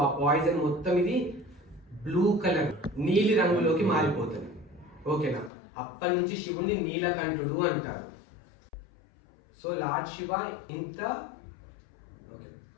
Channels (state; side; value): drops out; right; at 5.5 s